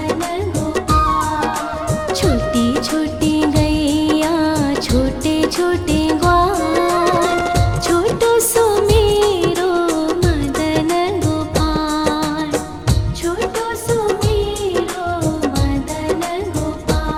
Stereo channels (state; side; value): identical; both; correlation 1.00